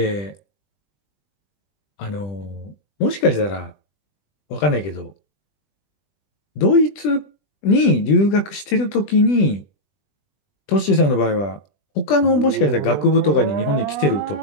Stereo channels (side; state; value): right; late; 20 ms